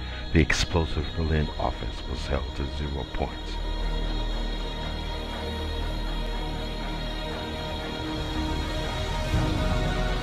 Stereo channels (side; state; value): both; identical; correlation 1.00